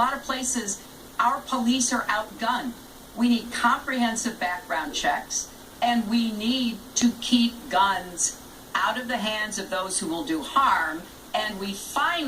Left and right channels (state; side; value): identical; both; correlation 1.00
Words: of places, our police are outgunned. We need comprehensive background checks, and we need to keep guns out of the hands of those who will do harm, and we